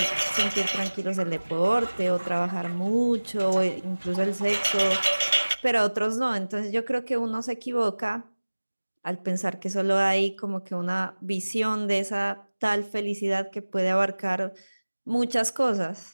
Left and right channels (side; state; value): both; inverted; correlation -1.00